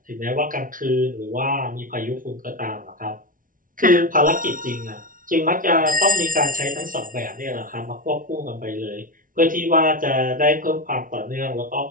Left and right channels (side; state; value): left; late; 0.39 ms